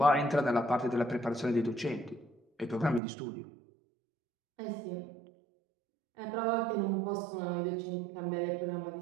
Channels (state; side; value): drops out; left; at 3.0 s